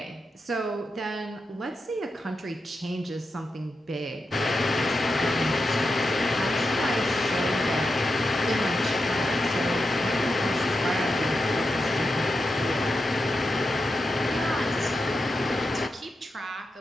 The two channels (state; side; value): normal; both; correlation 0.88